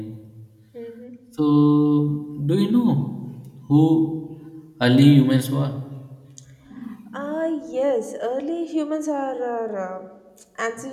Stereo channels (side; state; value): both; identical; correlation 1.00